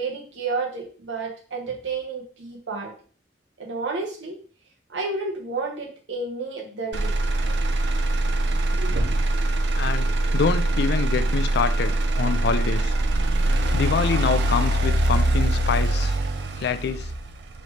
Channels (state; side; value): normal; both; correlation 0.66